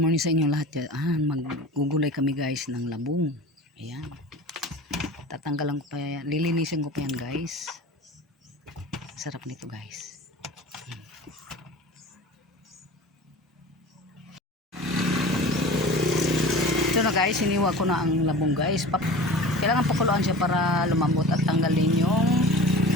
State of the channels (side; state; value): both; normal; correlation 0.38